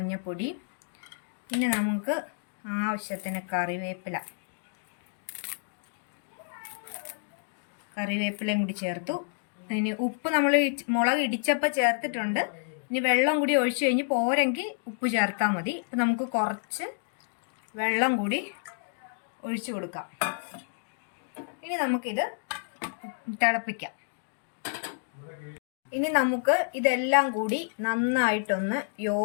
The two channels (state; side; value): silent; right; digital silence